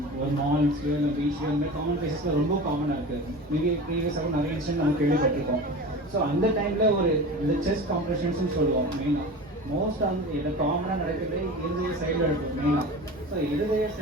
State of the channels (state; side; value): normal; both; correlation 0.33